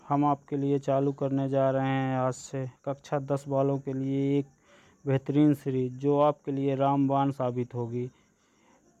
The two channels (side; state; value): both; identical; correlation 1.00